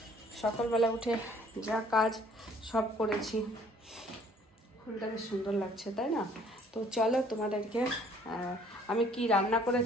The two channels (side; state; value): both; normal; correlation 0.58